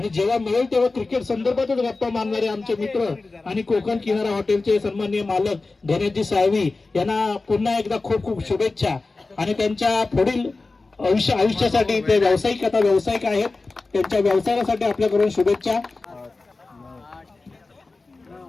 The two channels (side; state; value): right; quieter; 3.6 dB